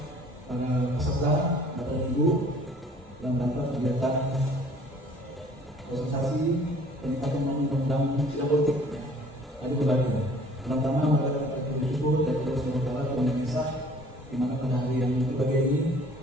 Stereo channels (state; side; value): normal; both; correlation 0.53